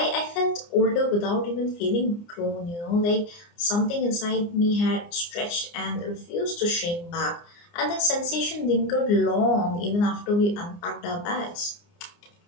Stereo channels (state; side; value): late; right; 29 ms